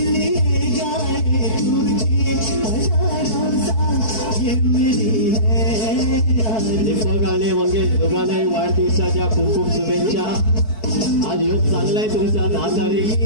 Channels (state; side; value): late; right; 4.6 ms